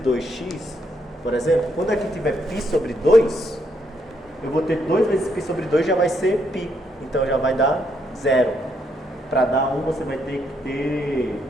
por exemplo, quando aqui tiver π sobre 2, eu vou ter 2 vezes π sobre 2 já vai ser π. Então já vai dar 0. Para dar 1 você vai ter que ter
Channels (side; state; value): both; normal; correlation 0.75